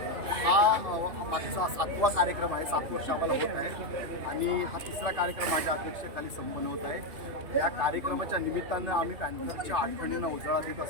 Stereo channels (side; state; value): left; late; 2.8 ms